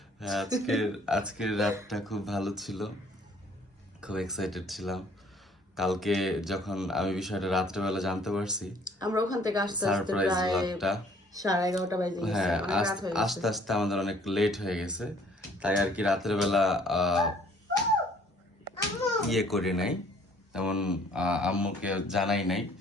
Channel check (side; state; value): both; normal; correlation 0.58